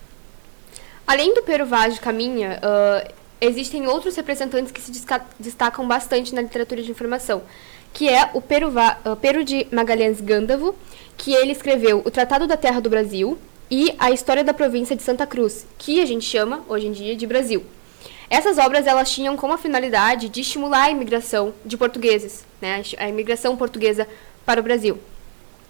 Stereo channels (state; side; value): silent; left; 57 dB below the other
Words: Além do Pero Vaz de Caminha, existem outros representantes que se destacam bastante na literatura de informação, que é o Pero de Magalhães Gândavo, que ele escreveu o Tratado da Terra do Brasil e a História da Província de Santa Cruz, que a gente chama, hoje em dia, de Brasil. Essas obras elas tinham como finalidade de estimular a imigração de portugueses, né, a imigração portuguesa para o Brasil.